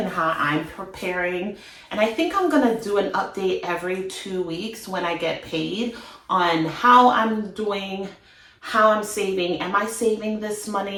how I'm preparing. And I think I'm gonna do an update every 2 weeks when I get paid on how I'm doing, how I'm saving. Am I saving this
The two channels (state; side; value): identical; both; correlation 1.00